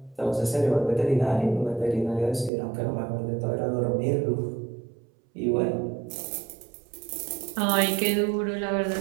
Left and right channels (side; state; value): left; drops out; at 2.5 s